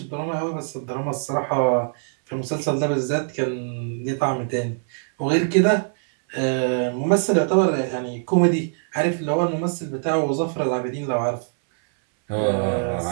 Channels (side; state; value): left; silent; 63 dB below the other